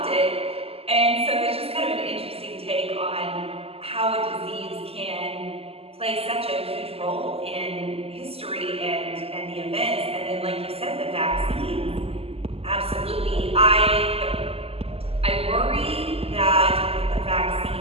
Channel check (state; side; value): late; left; 0.29 ms